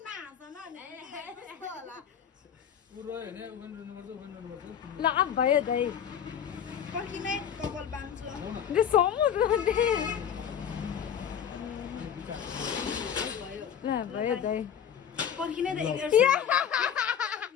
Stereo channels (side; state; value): right; quieter; 8.6 dB